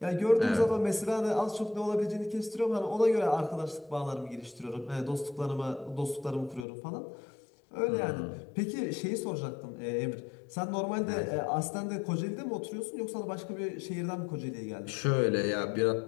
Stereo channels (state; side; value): drops out; right; at 6.7 s